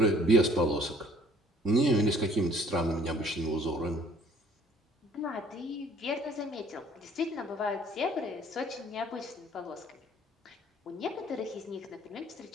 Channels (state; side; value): normal; both; correlation 0.58